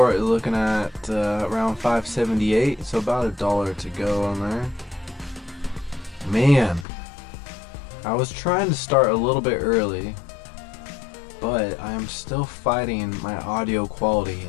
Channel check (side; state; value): right; drops out; at 6.9 s